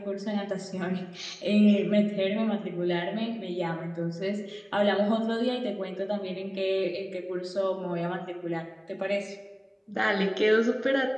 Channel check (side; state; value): both; identical; correlation 1.00